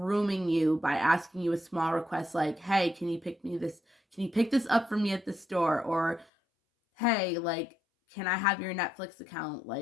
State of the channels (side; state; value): right; drops out; at 6.2 s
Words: you by asking you a small request like, "Hey, can you pick this up for me at the store?" or "Hey, like, can I have your Netflix account,